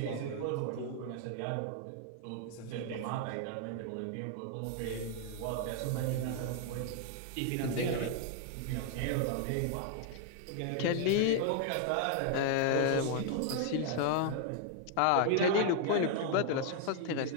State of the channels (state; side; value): different; both; correlation 0.00